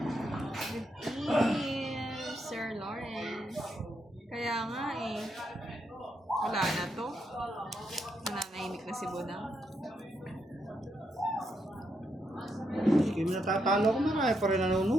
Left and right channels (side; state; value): both; normal; correlation 0.80